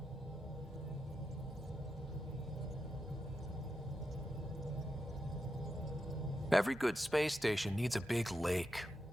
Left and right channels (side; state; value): both; normal; correlation 0.87